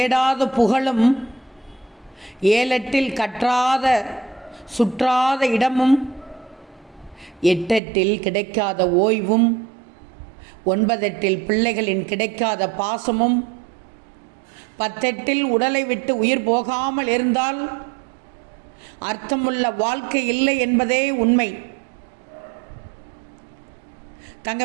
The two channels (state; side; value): drops out; left; at 7.8 s